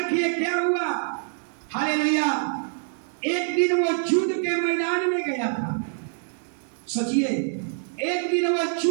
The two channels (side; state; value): left; silent; 61 dB below the other